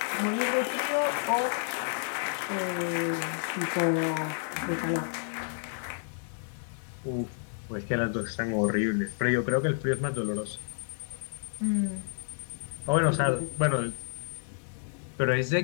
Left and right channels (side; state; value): right; silent; digital silence